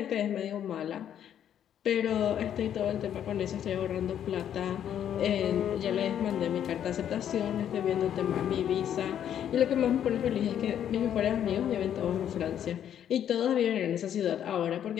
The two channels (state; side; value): quieter; right; 9.8 dB